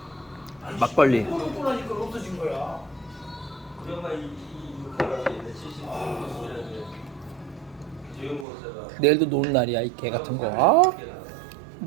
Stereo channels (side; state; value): left; drops out; at 8.5 s